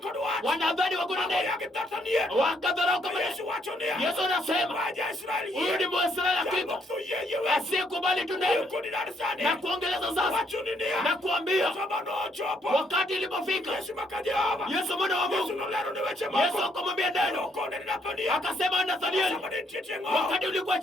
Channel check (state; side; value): normal; both; correlation 0.71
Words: wanadhani wako na neno, wakadharau kama Yesu anasema huyu ni Mwisraeli hakika asiyekubali tu neno. Na kuongeleza sasa na kuambia wakati ilipofika Yesu mwana wa Mungu, Yesu akamwambia neno akasema Nathanieli, wakati ulikuwa